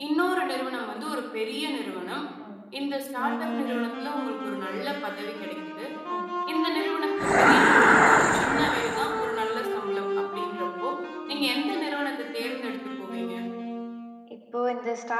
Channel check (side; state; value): both; identical; correlation 1.00